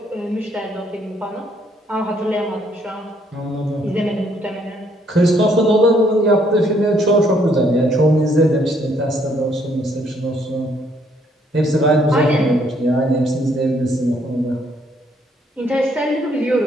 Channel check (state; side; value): normal; both; correlation 0.68